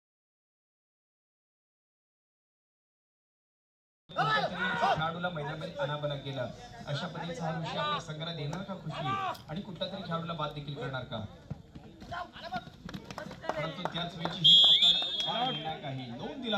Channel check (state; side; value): identical; both; correlation 1.00